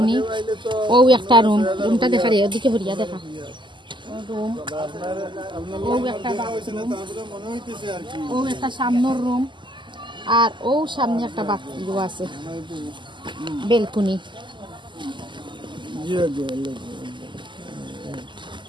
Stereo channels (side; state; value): left; late; 0.23 ms